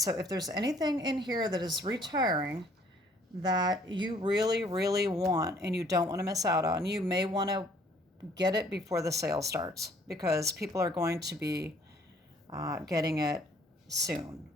if there's anything in here that is retiring that you really, really want and you don't want to miss out on, you may want to get it before the sale starts because people are going to be getting it soon.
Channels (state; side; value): normal; both; correlation 0.60